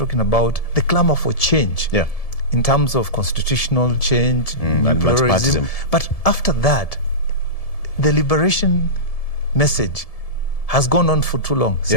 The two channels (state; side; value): late; right; 1.7 ms